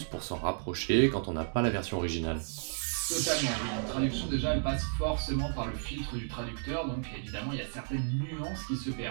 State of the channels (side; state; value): left; silent; 56 dB below the other